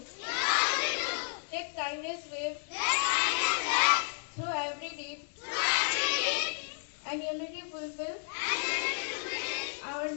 Take kindness with through every deed, and unity fulfill our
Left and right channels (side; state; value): right; silent; digital silence